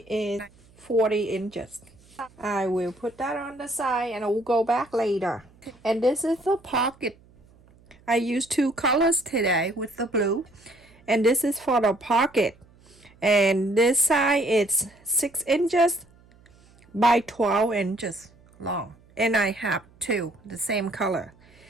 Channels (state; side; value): noise; right; hum, 28 dB below the sound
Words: is 40 inches. I will put that on the side and I will go back later. And this is the pocket. I used two colors today with the blue, and this is for the pocket. And this side is 6 inches by 12 inches long, and I have two the same color.